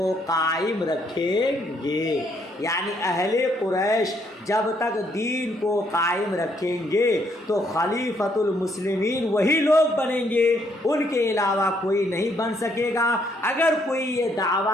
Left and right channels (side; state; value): both; normal; correlation 0.71